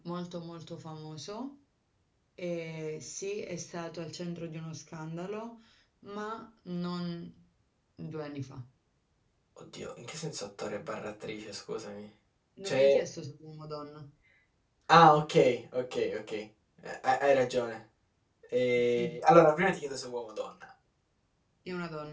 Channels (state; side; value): identical; both; correlation 1.00